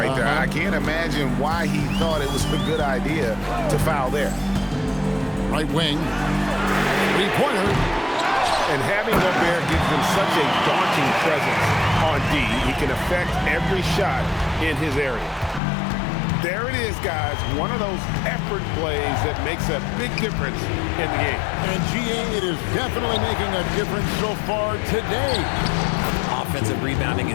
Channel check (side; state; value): right; drops out; at 15.6 s